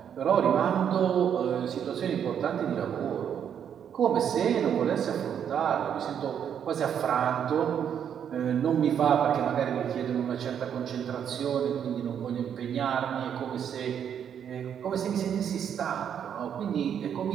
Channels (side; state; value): left; quieter; 8.6 dB